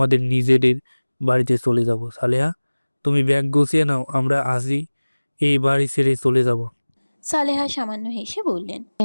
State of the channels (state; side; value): inverted; both; correlation -1.00